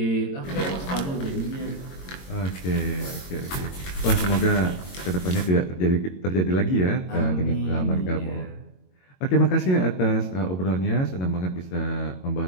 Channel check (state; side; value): late; right; 22 ms